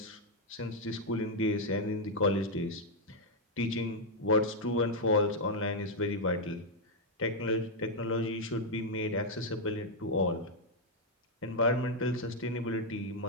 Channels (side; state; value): both; normal; correlation -0.02